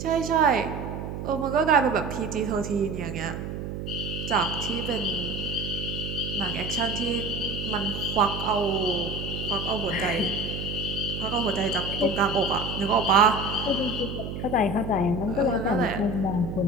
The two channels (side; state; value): right; noise; hum, 6 dB below the sound